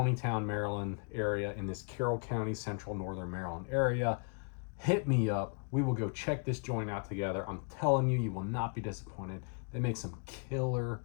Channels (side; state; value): right; quieter; 37.6 dB